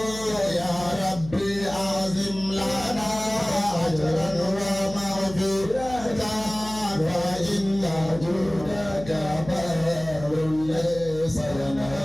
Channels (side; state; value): left; noise; hum, 14 dB below the sound